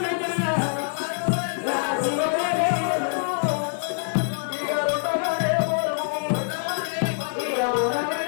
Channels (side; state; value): right; silent; 62 dB below the other